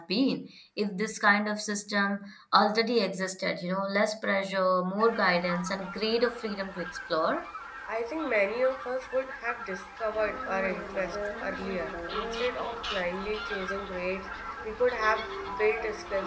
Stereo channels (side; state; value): both; identical; correlation 1.00